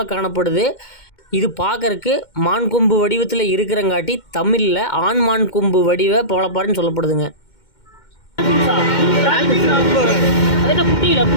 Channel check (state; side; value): late; right; 2.1 ms